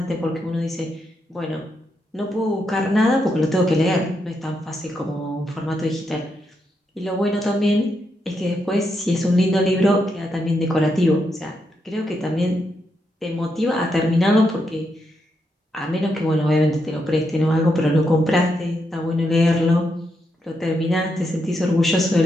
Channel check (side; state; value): both; normal; correlation 0.82